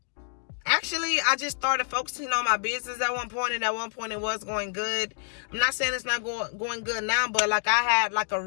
actually, I just started focusing on my business at one point, and at one point it was going good. I'm not saying it's not going good now, but, like, I had, like, a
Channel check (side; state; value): right; silent; digital silence